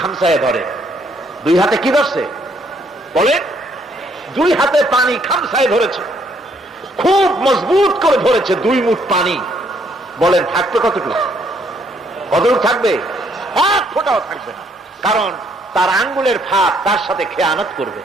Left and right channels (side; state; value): both; normal; correlation 0.68